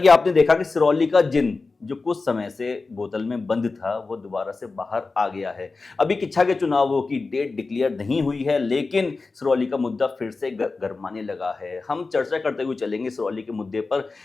आपने देखा कि सिरौली का जिन जो कुछ समय से बोतल में बंद था, वो दोबारा से बाहर आ गया है। अभी किच्छा के चुनावों की डेट डिक्लेयर नहीं हुई है, लेकिन सिरौली का मुद्दा फिर से गरमाने लगा है। हम चर्चा करते हुए चलेंगे सिरौली के मुद्दे पर,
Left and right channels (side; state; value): right; quieter; 3.9 dB